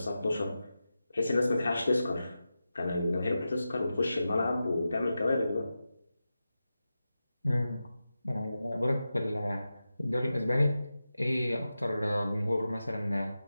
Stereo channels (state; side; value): inverted; both; correlation -0.92